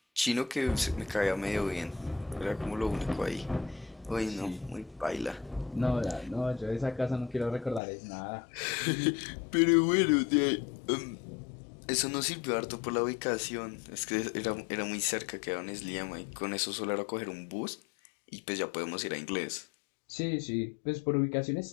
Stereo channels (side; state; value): right; drops out; at 7.8 s